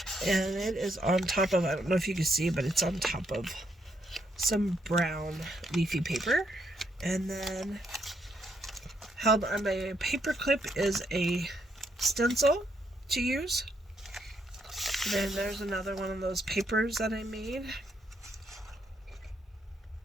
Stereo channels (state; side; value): normal; both; correlation 0.75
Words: And it is on top of, I don't know if you can see, but it's on top of some brown leafy paper. And then held on my paper clip is a stencil to use. Then there's another one of those papers that I made